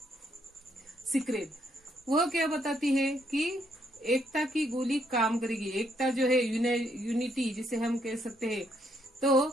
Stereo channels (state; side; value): normal; both; correlation 0.72